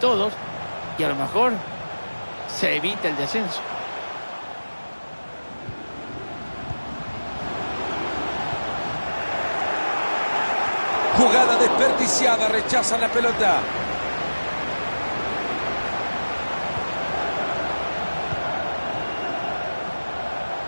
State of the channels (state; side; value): inverted; both; correlation -1.00